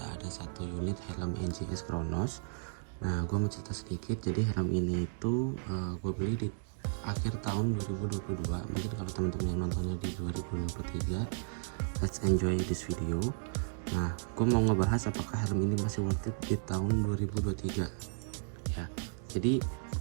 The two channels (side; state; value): left; silent; digital silence